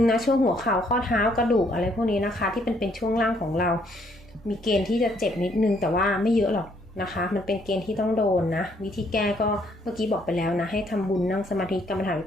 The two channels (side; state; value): both; normal; correlation 0.68